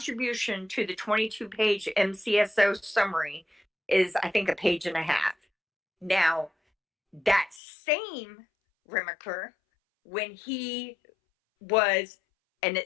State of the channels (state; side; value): drops out; right; at 7.6 s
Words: to the 22-page MCSO summary is, I think, a page and a half. Now, that same Remaker, when he was, and